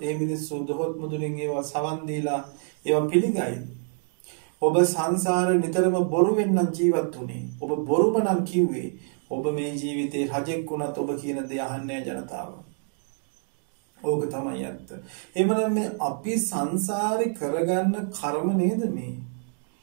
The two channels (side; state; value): left; silent; 57 dB below the other